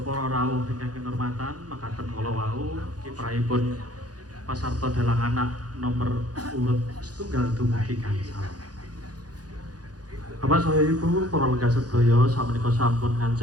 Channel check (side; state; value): left; late; 0.68 ms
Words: para rawuh ingkang kinurmatan, makaten kala wau kiprahipun Pasarta Dalang Anak nomor urut setunggal dumugi gangsal. Bapak saha Ibu para lenggah sedaya samenika sampun